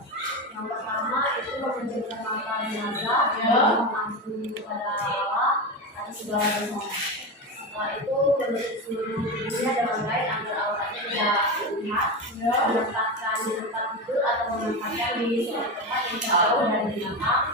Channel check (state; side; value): normal; both; correlation 0.19